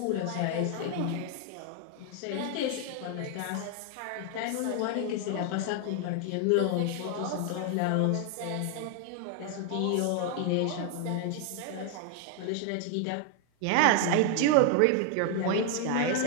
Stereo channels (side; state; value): both; different; correlation 0.00